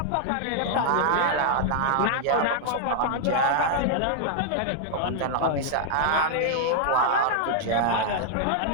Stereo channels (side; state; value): both; different; correlation -0.01